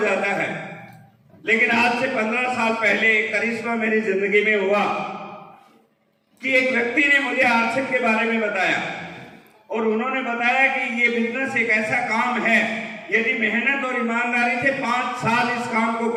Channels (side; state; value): both; identical; correlation 1.00